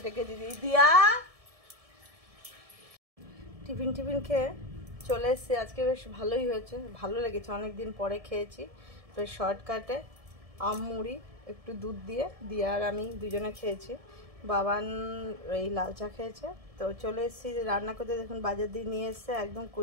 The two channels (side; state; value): left; late; 1.7 ms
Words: ডেকে দিদি, দিয়া টিফিন খেয়ে চলে এসেছি। আজকে বেশ ভালোই হয়েছে, ভালো লেগেছে, অনেক দিন পরে খেয়েছি। বেশ শর্টকাটে আম মুড়ি একটু দুধ দিয়ে আর আমি দুজনে খেয়েছি। বাবান এই লাল চা খেয়েছে। তো চলে এসেছি যে রান্না করতে। দেখুন বাজার দিয়ে নিয়ে এসছে একদম